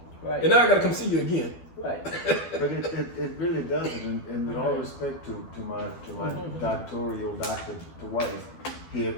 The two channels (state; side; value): late; right; 12 ms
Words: Right. and now I got to come see you again. Right. But it really doesn't, and with all respect to my doctoral doctor to wife here,